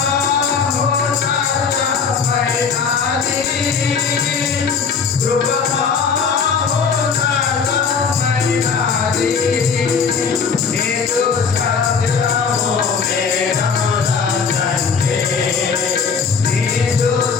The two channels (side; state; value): right; quieter; 5.8 dB